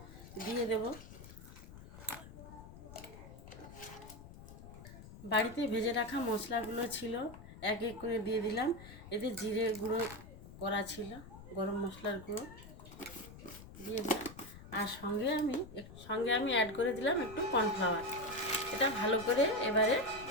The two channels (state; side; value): noise; left; rumble, 16 dB below the sound